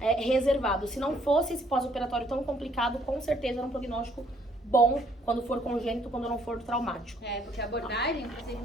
Se não fosse esse pós-operatório tão complicado, com certeza era um prognóstico bom quando for congênito, quando não for traumático. Porque a abordagem, o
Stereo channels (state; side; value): normal; both; correlation 0.65